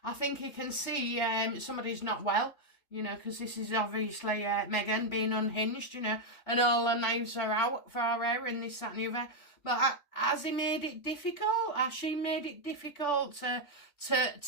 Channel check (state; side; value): late; right; 3.5 ms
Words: I think he can see somebody's not well, you know, because this is obviously Meghan being unhinged, you know, and all the knives are out for her and this, that and the other. But has he made it difficult? Has she made it difficult